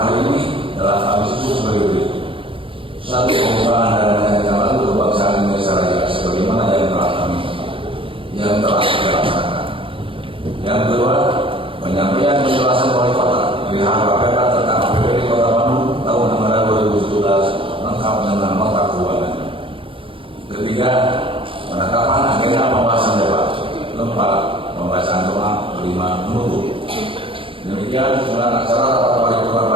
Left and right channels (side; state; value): left; late; 0.25 ms